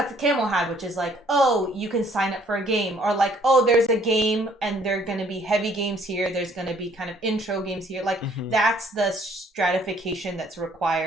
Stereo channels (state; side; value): normal; both; correlation 0.62